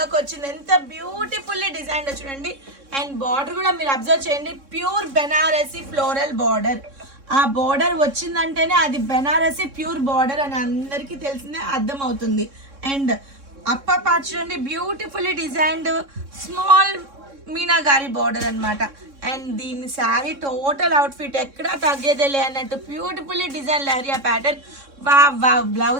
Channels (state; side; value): late; left; 3.6 ms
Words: వచ్చింది. ఎంత బ్యూటిఫుల్లీ డిజైన్ చూడండి. అండ్ బార్డర్ కూడా మీరు అబ్జర్వ్ చేయండి, ప్యూర్ బెనారసీ ఫ్లోరల్ బార్డర్. ఆ బార్డర్ వచ్చిందంటేనే అది బెనారసీ ప్యూర్ బార్డర్ అని అందరికీ తెలిసిందే, అర్థమవుతుంది. అండ్ అప్పర్ పార్ట్ చూడండి, బ్యూటిఫుల్లీ డిజైన్డ్ స్మాల్ మీనాగారి బార్డర్ అనమాట. అండ్ దీని శారీ టోటల్ అవుట్ఫిట్ ఎక్కడా తగ్గేదేలే అన్నట్టు బ్యూటిఫుల్లీ డిజైన్ లహరియా ప్యాటర్న్. వా